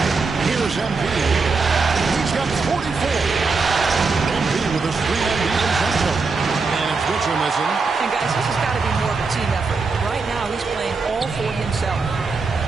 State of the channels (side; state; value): left; quieter; 4.3 dB